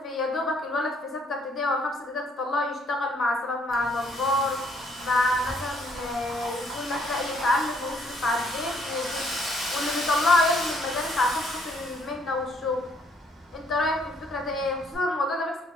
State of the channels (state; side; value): normal; both; correlation 0.66